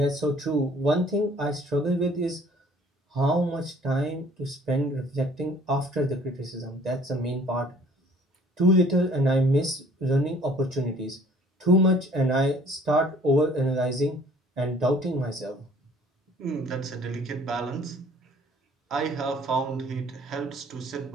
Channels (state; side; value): normal; both; correlation 0.55